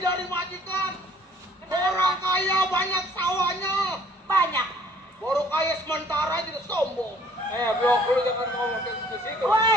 majikan. Orang kaya banyak sawahnya. Banyak. Baru kaya sementara jadi sombong. Blok lu jangan ngomong ke situ.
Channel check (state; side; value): normal; both; correlation 0.58